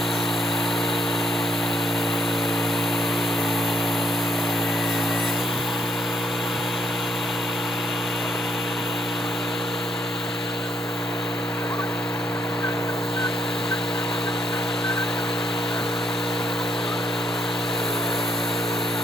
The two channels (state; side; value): normal; both; correlation 0.69